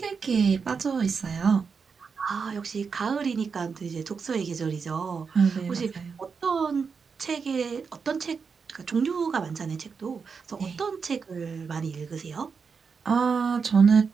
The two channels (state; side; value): quieter; left; 5.6 dB